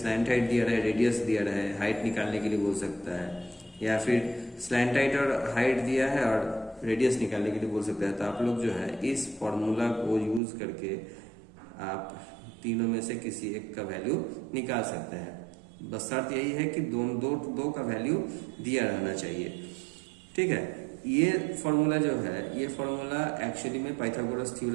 हाइट दिया रहे, रेडियस दिया रहे, हाइट निकालने के लिए बोल सकता है, या फिर स्लैंट हाइट और हाइट दिया है और रेडियस निकालने के लिए बोल सकता है। तो आप लोग जो है इस फॉर्मूला को यूज करके आप तीनों में से किसी एक का वैल्यू निकाल सकते हैं। बस शर्त यही है कि दो का वैल्यू दिया रहना चाहिए। ठीक है। ये फॉर्मूला जो है, ये फॉर्मूला एक्चुअली में पाइथागोरस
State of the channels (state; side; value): drops out; left; at 10.4 s